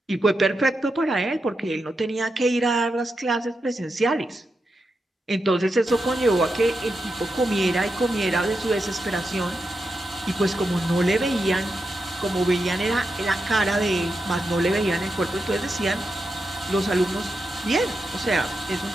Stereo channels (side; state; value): both; normal; correlation 0.87